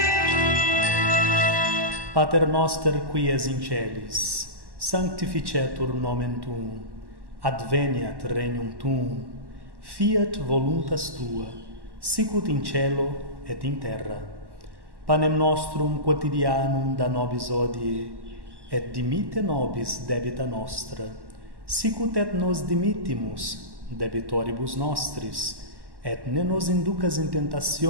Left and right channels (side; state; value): left; late; 1.1 ms